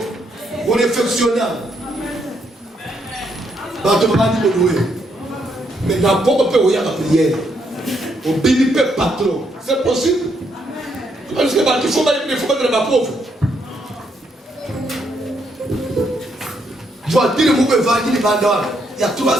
On est fonctionnel. Mais n'importe quoi, il y a la prière. Au béni patron. C'est possible. Parce que il faut mettre ma pauvre. Je vois dire que vous avez il y a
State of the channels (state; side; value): normal; both; correlation 0.75